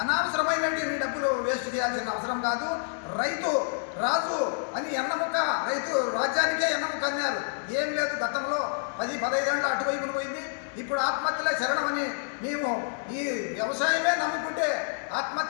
అనవసరమైనటువంటి డబ్బులు వేస్ట్ చేయాల్సిన అవసరం కాదు. రైతు రాజు అని ఎన్నముక్క, రైతు రాజ్యానికే ఎన్నముక్క అన్నారు. ఏం లేదు, గతంలో 10-15 ఏళ్ళు అటువైపున పోయింది. ఇప్పుడు ఆత్మహత్యలే శరణమని మేము ఈ వ్యవసాయమే నమ్ముకుంటే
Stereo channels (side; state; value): right; silent; 59 dB below the other